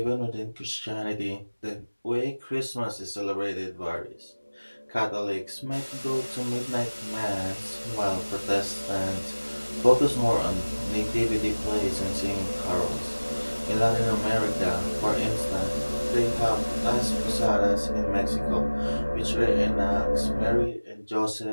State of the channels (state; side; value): inverted; both; correlation -1.00